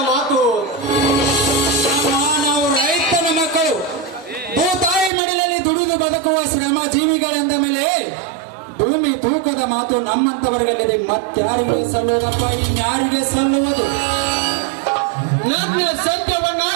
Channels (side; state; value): left; drops out; at 5.1 s